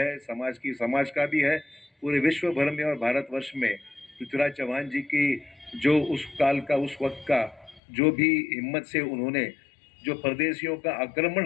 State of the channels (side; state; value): right; drops out; at 7.8 s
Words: समाज का भी है, पूरे विश्व भर में और भारतवर्ष में पृथ्वीराज चौहान जी की जो उस काल का उस वक्त का जो भी हिम्मत से उन्होंने जो परदेशियों का